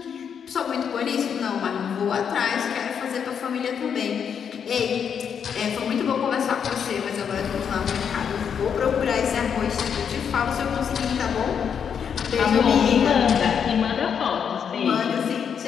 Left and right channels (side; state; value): right; quieter; 7.4 dB